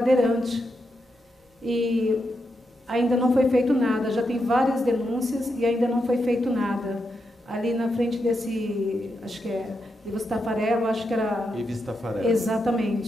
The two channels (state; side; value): normal; both; correlation 0.84